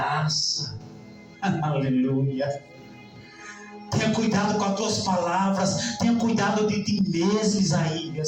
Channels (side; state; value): both; identical; correlation 1.00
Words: Aleluia. Tenha cuidado com as tuas palavras. Tenha cuidado de ti mesmo,